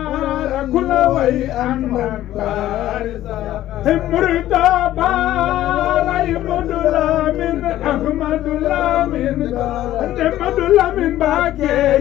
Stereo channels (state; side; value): quieter; right; 13.7 dB